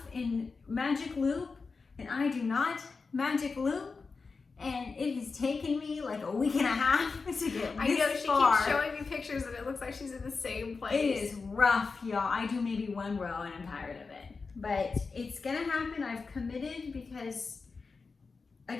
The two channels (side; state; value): right; quieter; 4.5 dB